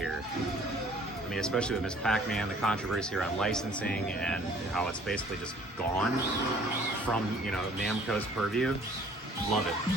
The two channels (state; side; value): normal; both; correlation 0.55